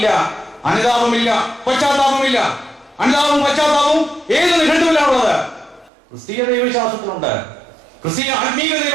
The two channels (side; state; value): left; drops out; at 5.9 s